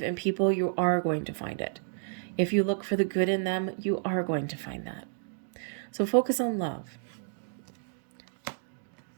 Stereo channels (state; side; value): silent; left; digital silence